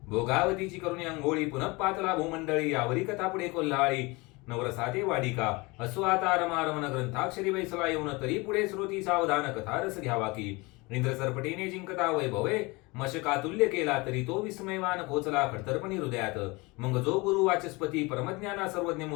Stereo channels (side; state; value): right; quieter; 24.9 dB